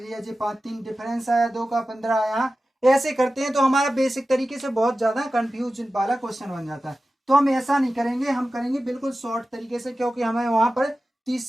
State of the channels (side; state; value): both; normal; correlation 0.94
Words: जी, 5 3 डिफरेंस आया, 2 का 15 आया। ऐसे करते हैं तो हमारा बेसिक तरीके से बहुत ज्यादा कंफ्यूज वाला क्वेश्चन बन जाता है। तो हम ऐसा नहीं करेंगे, हम करेंगे बिल्कुल शॉर्ट तरीके से, क्योंकि हमें वहां पर 30